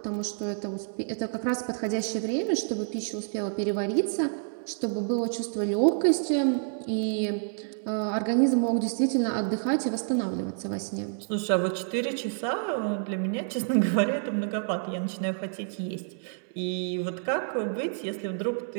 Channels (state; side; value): silent; left; 59 dB below the other